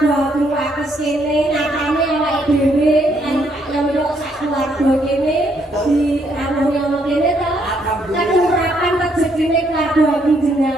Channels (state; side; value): normal; both; correlation 0.72